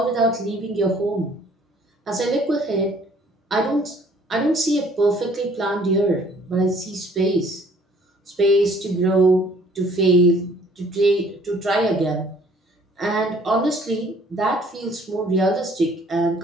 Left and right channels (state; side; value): normal; both; correlation 0.58